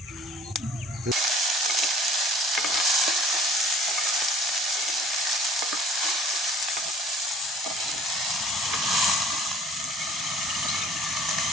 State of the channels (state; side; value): normal; both; correlation 0.50